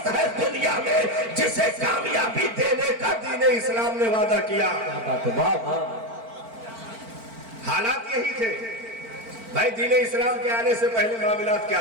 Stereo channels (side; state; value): left; late; 4.4 ms